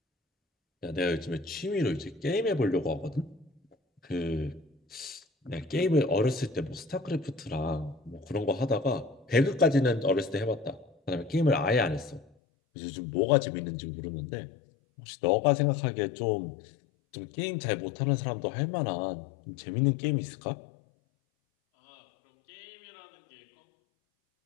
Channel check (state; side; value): drops out; right; at 12.2 s